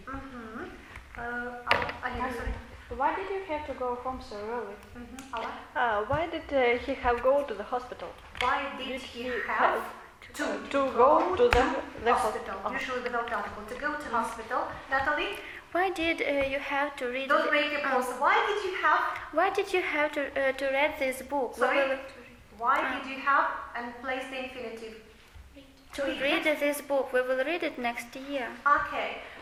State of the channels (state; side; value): identical; both; correlation 1.00